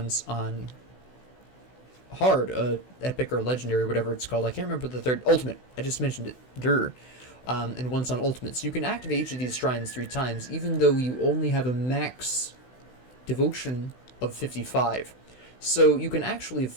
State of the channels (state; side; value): late; right; 16 ms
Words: on hard, epic or legendary, whatever it's called. I can't remember the third. Ultimate. I just mentioned it. And once on ultimate. So you can activate each of these shrines 3 times, even though you only have a max devotion of 55. So you can actually